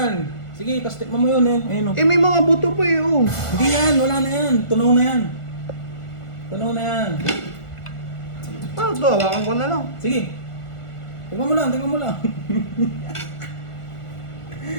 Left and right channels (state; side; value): late; right; 1.4 ms